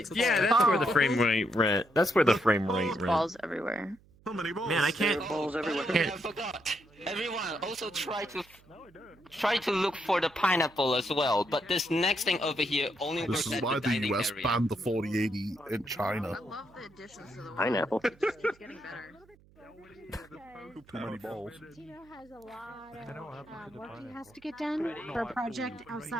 Yeah, that's where the frame rate went. That's where the frame rate went. Balls everywhere. So many balls. Man, I can't. Balls everywhere. I forgot. Everyone also try to look for the pineapple as well. But this next thing over here only This works is at why the the dining US area. banned the 4080 in China. Pineapple. Too many balls. Tino has a lot of work he has to get done for a project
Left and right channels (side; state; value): right; noise; hum, 28 dB below the sound